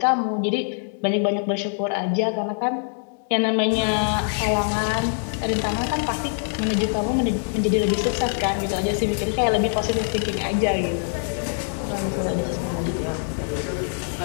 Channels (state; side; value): silent; right; digital silence